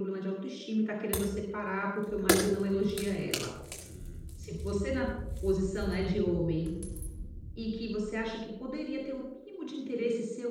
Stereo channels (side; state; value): both; identical; correlation 1.00